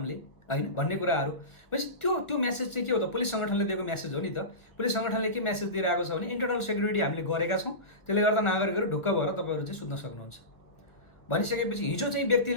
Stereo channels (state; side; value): late; right; 1.4 ms